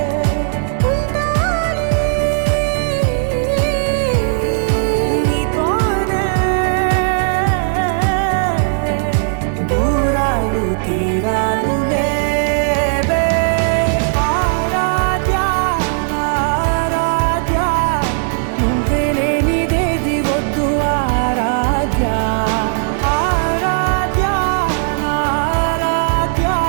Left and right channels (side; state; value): left; silent; digital silence